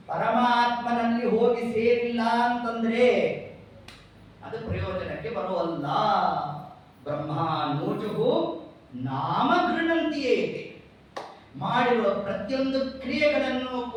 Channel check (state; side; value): identical; both; correlation 1.00